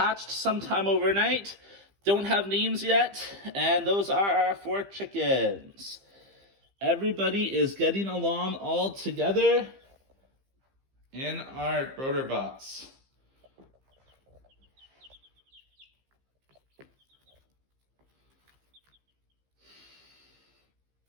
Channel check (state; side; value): late; left; 15 ms